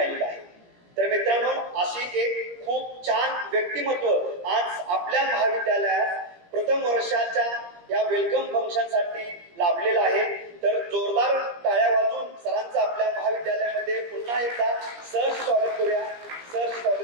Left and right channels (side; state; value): left; late; 17 ms